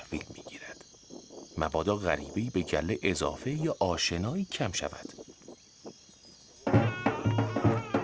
می گیرد. مبادا غریبه‌ای به گله اضافه یا آشنایی کم شود.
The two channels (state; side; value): identical; both; correlation 1.00